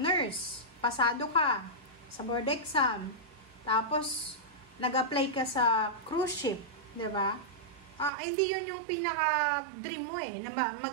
nurse, pasado ka sa board exam, tapos nag-apply ka sa cruise ship, 'di ba? Hindi yun yung pinaka-dream mo na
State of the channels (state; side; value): drops out; left; at 8.1 s